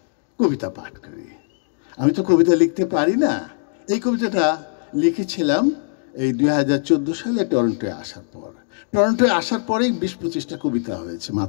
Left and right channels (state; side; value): silent; right; digital silence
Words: কবিতা পাঠ করি। আমি তো কবিতা লিখতে পারি না। এই কবিতাটা লিখেছিলাম এই 2014 সালে টরন্টোয় আসার পর। টরন্টোয় আসার পরেই 20-25টা কবিতা হয়েছে